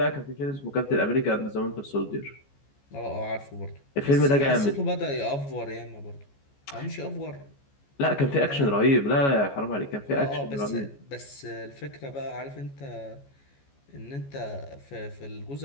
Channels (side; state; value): right; late; 14 ms